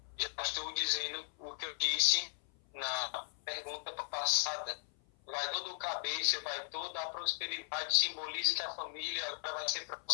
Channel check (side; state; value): right; silent; 53 dB below the other